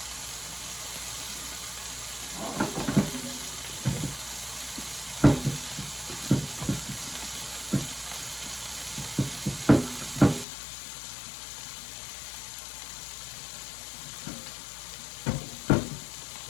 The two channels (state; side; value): drops out; right; at 10.5 s